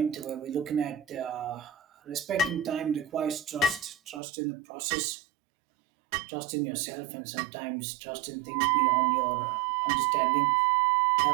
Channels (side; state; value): left; drops out; at 4.2 s